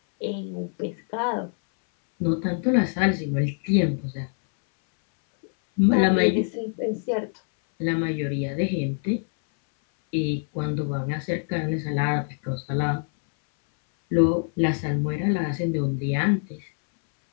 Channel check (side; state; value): right; silent; 62 dB below the other